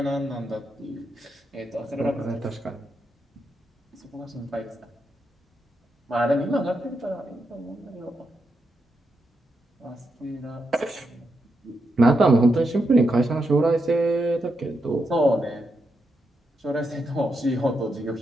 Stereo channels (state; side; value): normal; both; correlation 0.84